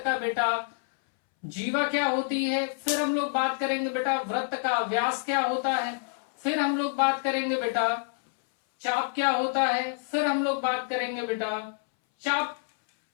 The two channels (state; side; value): silent; right; 60 dB below the other